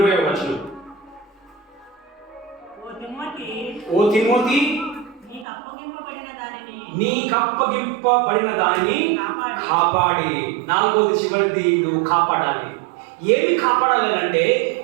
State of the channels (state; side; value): drops out; left; at 5.5 s